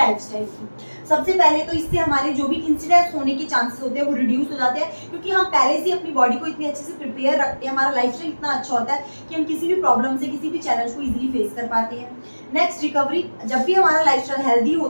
की, सबसे पहले तो इससे हमारे जो भी इंसिडेंट्स होने के चांसेस होते हैं वो रिड्यूस हो जाते हैं, क्योंकि हम पहले से अपनी बॉडी को इतनी अच्छे से प्रिपेयर रखते हैं, हमारा लाइफस्टाइल इतना अच्छा होता है कि हम किसी भी प्रॉब्लम से, किसी भी चैलेंज को इजीली फेस कर पाते हैं। नेक्स्ट रिकवरी, जब भी हमारा लाइफस्टाइल हेल्दी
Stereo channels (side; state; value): both; inverted; correlation -1.00